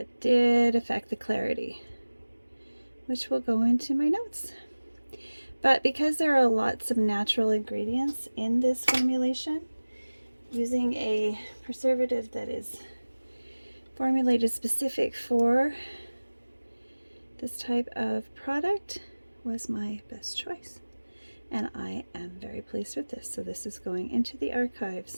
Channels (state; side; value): inverted; both; correlation -1.00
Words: did affect the clarity, which will go into my notes. But because there are lots of natural ingredients in this formulation, using a preservative that is formulated specific for this type of product was my best choice. And I am very pleased with this. So this is going into the archives.